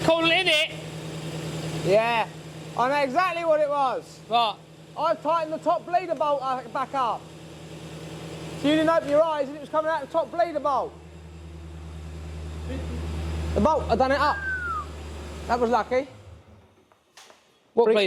in it. Yeah, I know exactly what it was. Right. I've tightened the top bleeder bolt back up. So you didn't open your eyes and it was coming out the top bleeder bolt. The bolt, I done it up. That was lucky. What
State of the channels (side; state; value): both; identical; correlation 1.00